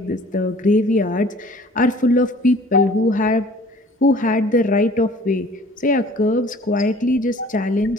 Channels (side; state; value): both; normal; correlation 0.51